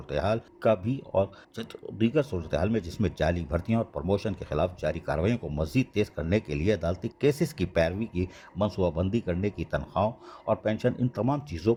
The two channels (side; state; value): both; identical; correlation 1.00